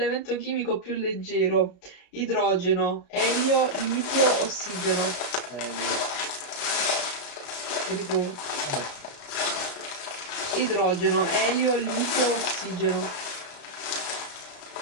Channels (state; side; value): late; right; 34 ms